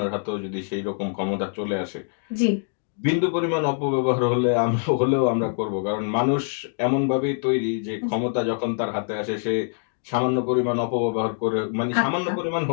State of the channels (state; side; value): silent; right; digital silence